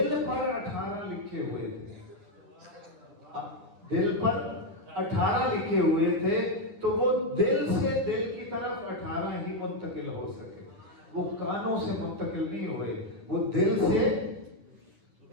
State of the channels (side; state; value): left; late; 9.9 ms